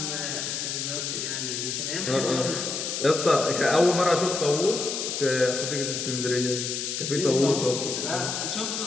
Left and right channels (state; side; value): noise; left; hiss, 3 dB below the sound